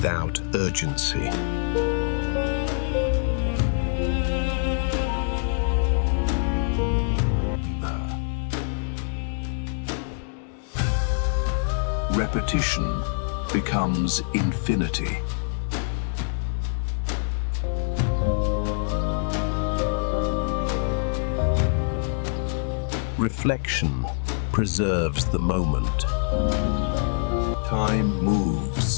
urgency. Repetition becomes infinity. Reflection preserves the moment. Time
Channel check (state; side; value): silent; right; digital silence